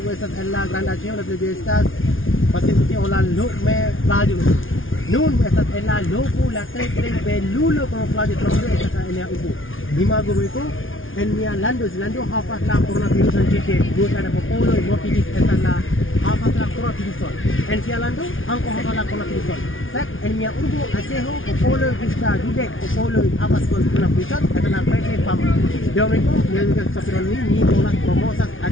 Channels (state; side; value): late; right; 0.58 ms